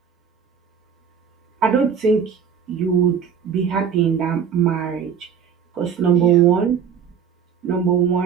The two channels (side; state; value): left; quieter; 7.3 dB